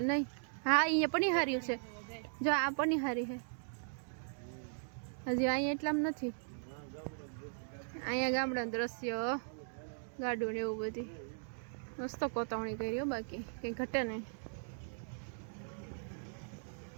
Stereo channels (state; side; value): silent; left; digital silence